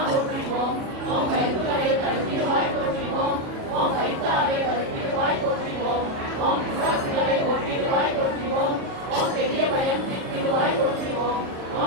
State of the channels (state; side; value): late; left; 37 ms